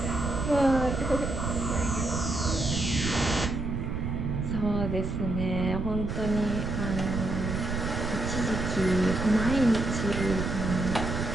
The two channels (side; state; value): right; noise; rumble, 2 dB below the sound